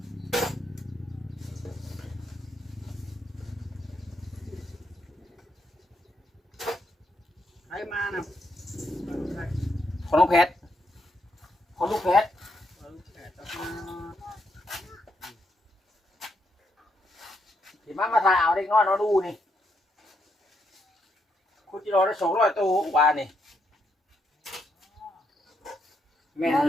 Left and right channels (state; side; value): normal; both; correlation 0.78